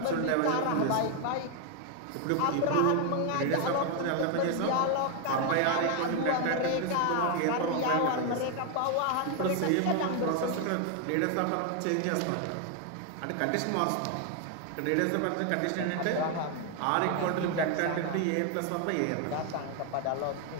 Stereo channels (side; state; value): both; different; correlation 0.01